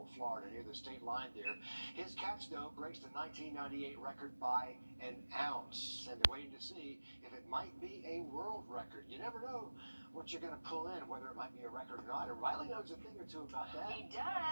Florida, near the state line there. His catch, though, breaks the 1998 record by an ounce. And they're waiting to see if it might be a world record. You never know what you're going to pull in, whether it might be a record or not. And Riley knows a thing or two about that. He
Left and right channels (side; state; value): both; inverted; correlation -1.00